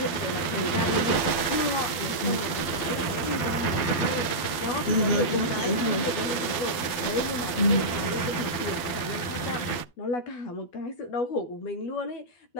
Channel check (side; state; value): right; late; 12 ms